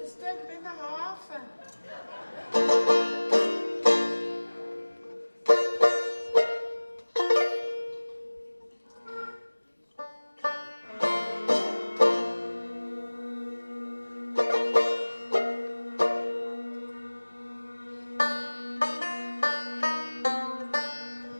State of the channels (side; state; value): both; inverted; correlation -1.00